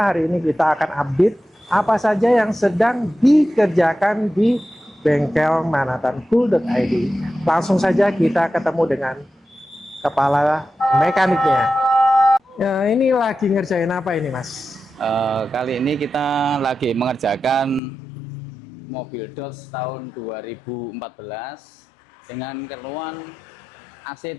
ini kita akan update apa saja yang sedang dikerjakan di bengkel manatancool.id. Langsung saja kita ketemu dengan kepala mekaniknya. Ya, ini lagi ngerjain apa ini, Mas? Kali ini kita lagi mengerjakan mobil Dodge tahun 2014 dengan keluhan AC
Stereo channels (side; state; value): right; drops out; at 17.8 s